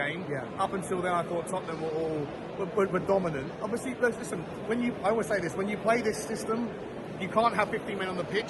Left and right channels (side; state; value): both; identical; correlation 1.00